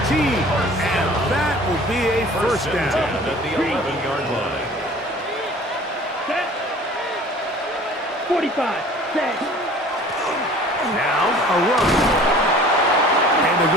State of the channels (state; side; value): normal; both; correlation 0.47